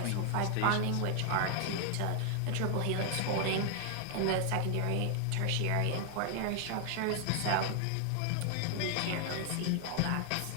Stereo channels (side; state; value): both; different; correlation 0.00